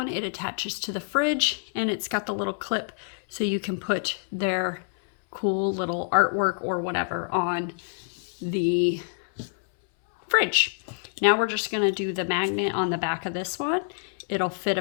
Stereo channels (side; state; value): right; silent; 60 dB below the other